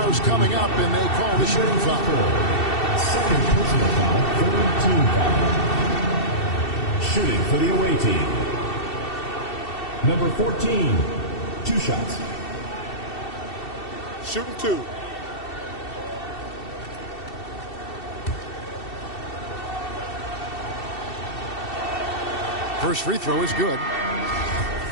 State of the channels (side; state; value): right; late; 2.7 ms